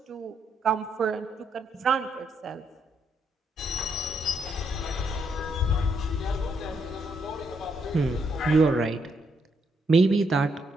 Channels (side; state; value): both; normal; correlation 0.76